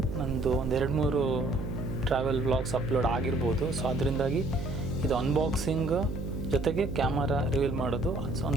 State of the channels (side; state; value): right; noise; hum, 6 dB below the sound